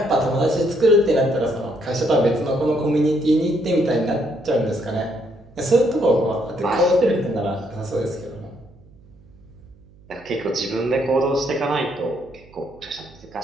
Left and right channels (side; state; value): right; noise; hum, 26 dB below the sound